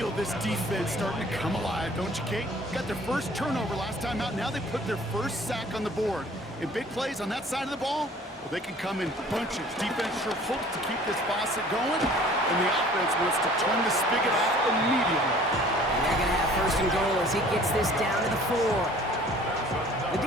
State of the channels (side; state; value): both; normal; correlation 0.51